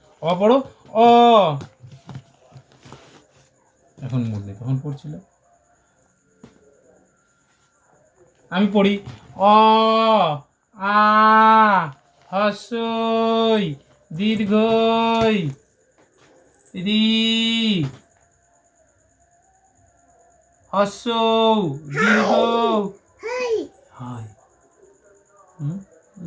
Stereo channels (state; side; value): identical; both; correlation 1.00